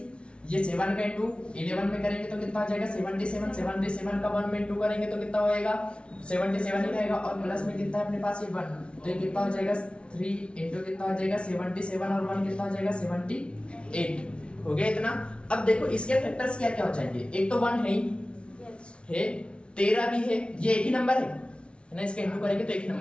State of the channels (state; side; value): late; right; 0.059 ms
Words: ये 7 का इंटू 11 में करेंगे तो कितना आ जाएगा 77, 77 का 1 में इंटू करेंगे तो कितना होएगा 77 ही रहेगा, और प्लस में कितना है अपने पास ये 1, तो ये कितना हो जाएगा 3 इंटू कितना हो जाएगा 77 और 1 कितना हो जाएगा 78 हो गया इतना। अब देखो इसके फैक्टर्स क्या क्या हो जाएंगे, एक तो 1 है ही है, 13 भी है, ये एक ही नंबर है ना, इसका इंटू करेंगे तो एक ही